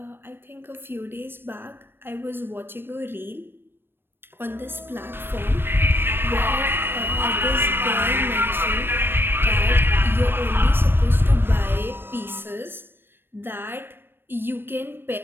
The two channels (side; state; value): left; late; 0.10 ms